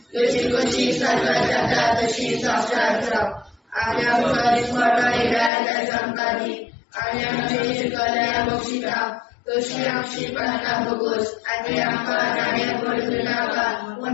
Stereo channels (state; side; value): drops out; right; at 5.5 s